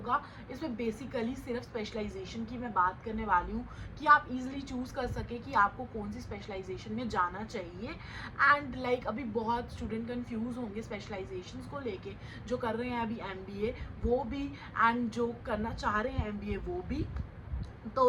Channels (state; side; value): identical; both; correlation 1.00